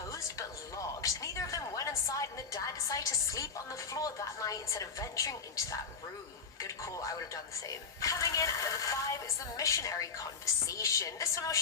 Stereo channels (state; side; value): quieter; right; 5.4 dB